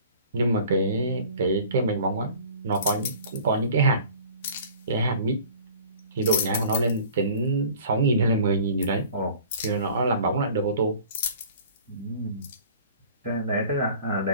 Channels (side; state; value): both; inverted; correlation -0.47